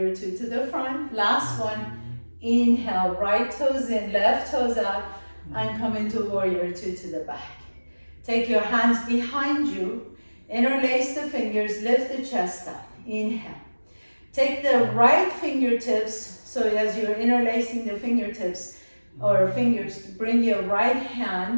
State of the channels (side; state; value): both; inverted; correlation -1.00